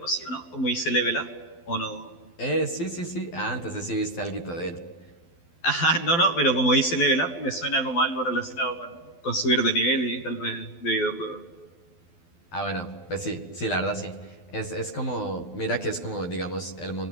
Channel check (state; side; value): late; right; 12 ms